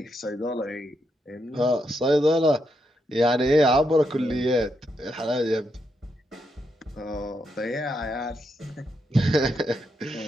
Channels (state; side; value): normal; both; correlation 0.81